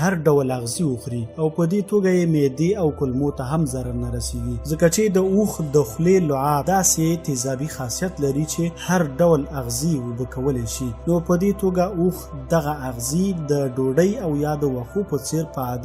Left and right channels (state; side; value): identical; both; correlation 1.00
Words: ډول اغذي وخوري او په دې توګه یې معدې او کولمو ته هم ضرر نه رسیږي، ځکه چې د اوښ د خولې لعاب داسې تیزابي خاصیت لري چې هر ډول اغذي اوبه کولی شي. نو په دې توګه اوښ دغه اغذي د ډوډۍ او یا د وښو په څیر په